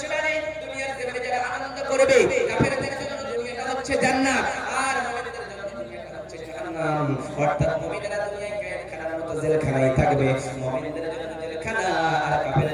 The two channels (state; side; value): identical; both; correlation 1.00